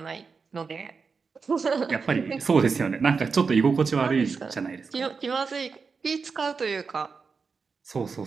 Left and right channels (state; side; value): quieter; left; 5.1 dB